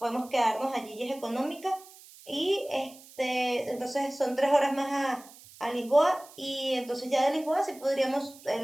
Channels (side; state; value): right; noise; hiss, 21 dB below the sound